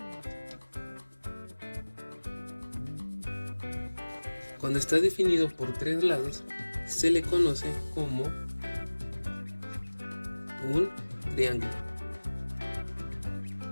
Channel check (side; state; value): both; inverted; correlation -1.00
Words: se le conoce como un triángulo.